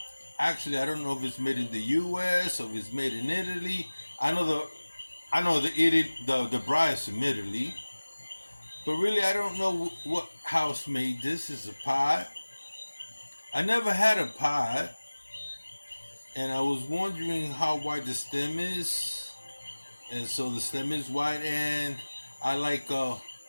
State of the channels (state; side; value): inverted; both; correlation -1.00